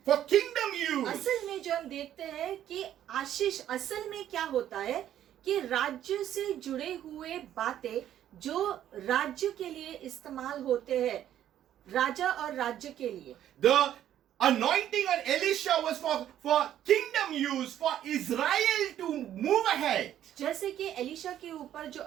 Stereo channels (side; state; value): left; quieter; 11.3 dB